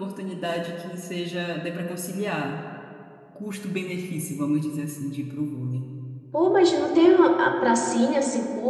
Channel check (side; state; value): both; identical; correlation 1.00